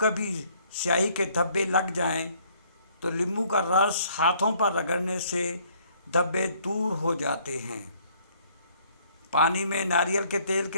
سیاہی کے دھبے لگ جائیں تو لیموں کا رس ہاتھوں پر رگڑنے سے دھبے دور ہو جاتے ہیں۔ پانی میں ناریل کے تیل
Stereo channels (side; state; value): both; inverted; correlation -0.63